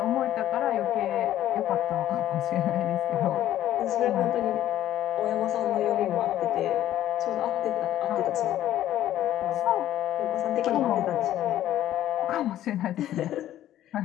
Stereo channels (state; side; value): quieter; right; 12.7 dB